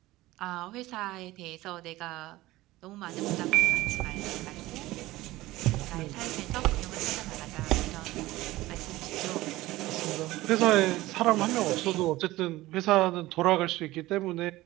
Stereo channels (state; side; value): quieter; left; 18.0 dB